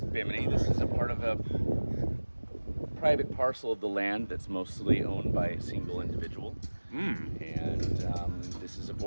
Bimini. This is a part of a private parcel of the land that's mostly owned by a single individual. And this is a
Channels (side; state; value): both; inverted; correlation -1.00